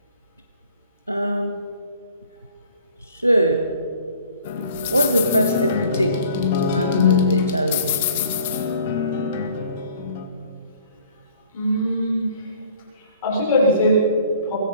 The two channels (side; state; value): both; inverted; correlation -0.54